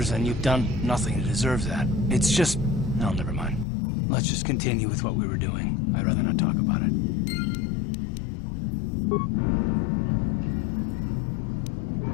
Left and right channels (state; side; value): drops out; right; at 3.7 s